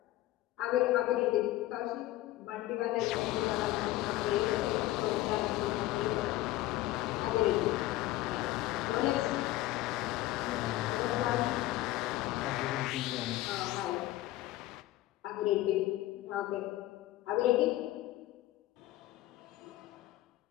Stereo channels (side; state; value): right; quieter; 16.2 dB